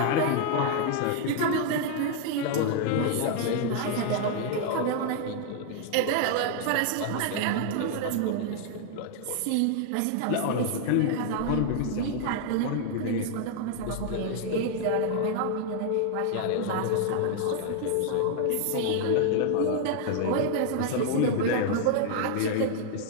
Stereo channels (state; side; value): different; both; correlation 0.00